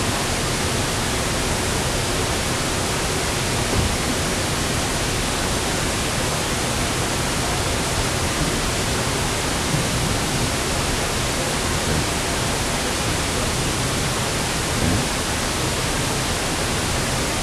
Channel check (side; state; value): both; identical; correlation 1.00